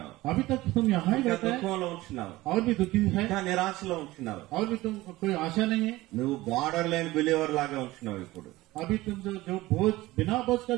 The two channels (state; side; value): quieter; left; 18.4 dB